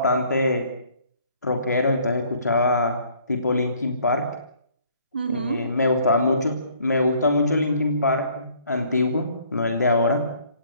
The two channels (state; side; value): inverted; both; correlation -0.60